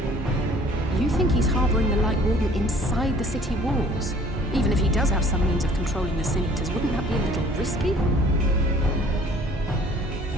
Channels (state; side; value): normal; both; correlation 0.53